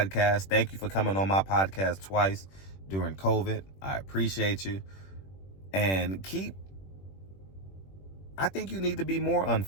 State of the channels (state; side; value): late; right; 21 ms